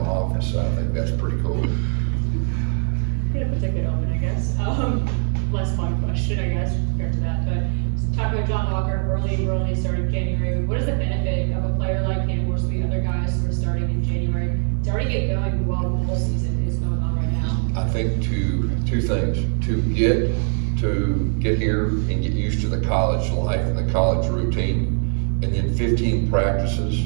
office, so I think that's pretty cool. Get a good omen, I guess. Less fun question, I guess, compared to that. But talk about John Walker, early starting January. What is the benefit of a player like him versus the other guys who are starting in January to already get going while the whole season is going on right now? I think two things: to get here and get used to the college life and the college routine, and then 15 practices,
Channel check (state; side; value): silent; left; digital silence